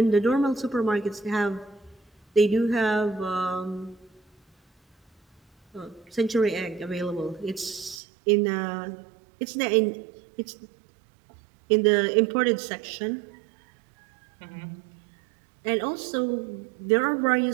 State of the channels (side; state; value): left; drops out; at 8.0 s